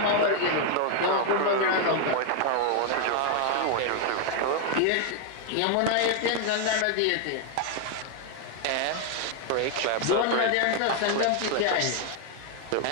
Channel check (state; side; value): different; both; correlation 0.00